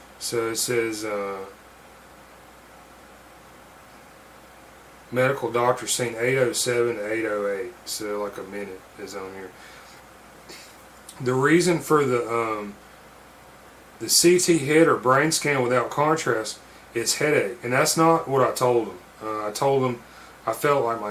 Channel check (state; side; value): identical; both; correlation 1.00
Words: So it says medical doctor seen 8:07 to 8:08. So like a minute is on here. The reason for the CT head or brain scan without contrast is headache, and that's not what I told him. I told him I felt like